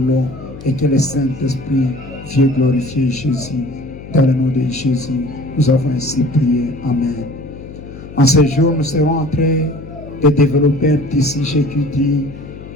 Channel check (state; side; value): noise; left; hum, 15 dB below the sound